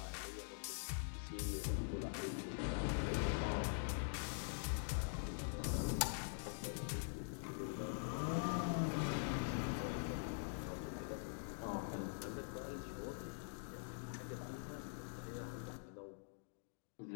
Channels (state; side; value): silent; right; digital silence